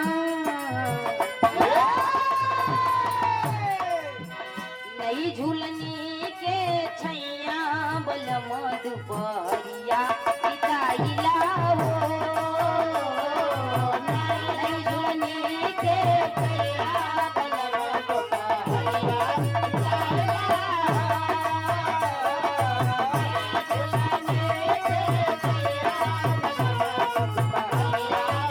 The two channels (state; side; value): identical; both; correlation 1.00